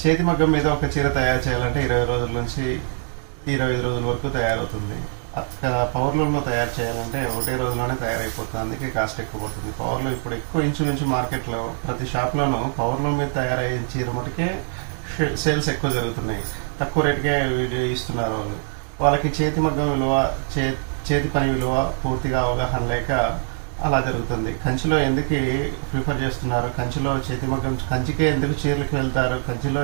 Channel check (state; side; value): silent; left; 61 dB below the other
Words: చేతి మగ్గం మీద ఒక చీర తయారు చేయాలంటే 20 రోజుల నుంచి 25 రోజుల వరకు తయారవుతుంది. పవర్లూమ్లో తయారు చేయాలంటే ఒకటే రోజులోనే తయారైపోతుంది. అందుకే కాస్ట్ ఎక్కువ పడుతుంది. పవర్లూమ్ ఇప్పుడు ఎక్కువ ఇంచుమించు మార్కెట్లో ప్రతి షాప్లోనూ పవర్లూమ్ మీద తయారయ్యే చీర మటుకే సేల్స్ ఎక్కువ జరుగుతున్నాయి. తక్కువ రేటుకే ఇస్తున్నారు వాళ్ళు. వాళ్ళకి చేతి మగ్గం విలువ, చేతి పని విలువ పూర్తిగా అవగాహన లేక అలా జరుగుతుంది. కంచిలో ఎందుకు ప్రిఫర్ చేస్తున్నారు, కంచిలో చేతి మగ్గం, కంచికే ఎందుకు చీరలకు వెళ్తారు, కంచిలో